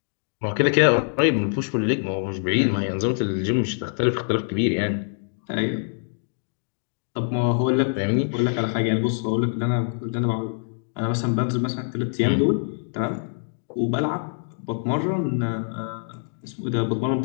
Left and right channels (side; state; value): right; silent; digital silence